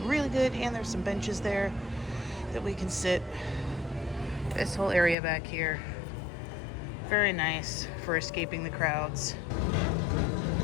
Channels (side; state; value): right; drops out; at 5.2 s